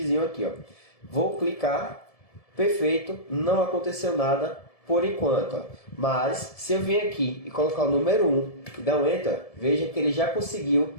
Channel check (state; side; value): late; right; 1.7 ms